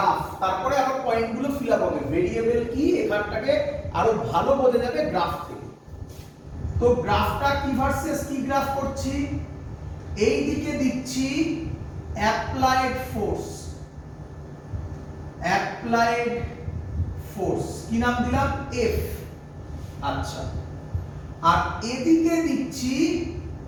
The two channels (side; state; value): both; identical; correlation 1.00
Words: তারপরে আবার পয়েন্টগুলো ফিল আপ হবে। ভেরিয়েবল কি এখানটাকে আরো ভালো বোঝা যাবে গ্রাফ থেকে। তো গ্রাফটা কি ভার্সেস কি গ্রাফ করছি? এই দিকে দিচ্ছি অ্যাপ্লাইড ফোর্স, অ্যাপ্লাইড ফোর্স কি নাম দিলাম? এফ। আচ্ছা, আর এদিকে দিচ্ছি